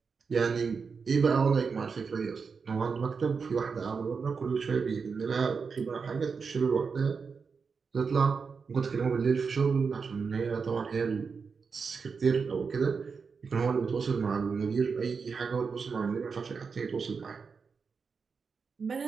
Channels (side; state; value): left; quieter; 5.3 dB